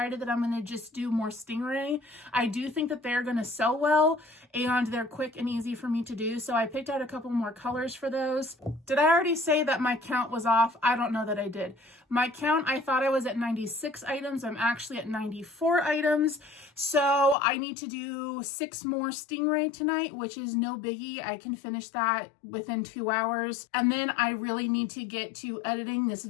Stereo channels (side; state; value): right; drops out; at 17.4 s